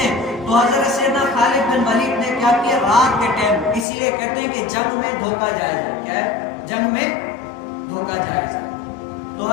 تو حضرت سیدنا خالد بن ولید نے کیا کیا؟ رات کے ٹائم، اسی لیے کہتے ہیں کہ جنگ میں دھوکہ جائز ہے. کیا ہے؟ جنگ میں دھوکہ جائز ہے. تو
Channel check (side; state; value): right; drops out; at 3.9 s